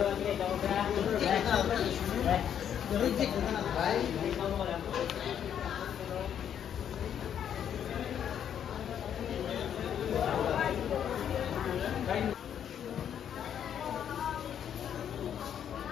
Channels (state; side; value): quieter; right; 9.1 dB